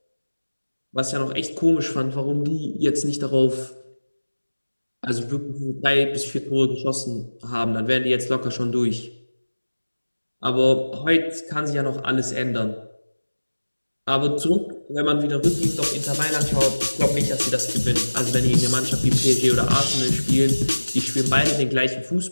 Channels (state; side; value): inverted; both; correlation -1.00